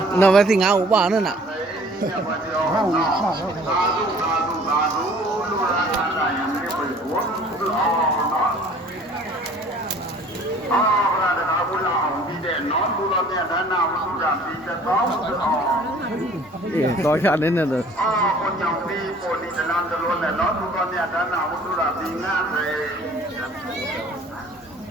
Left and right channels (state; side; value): normal; both; correlation 0.51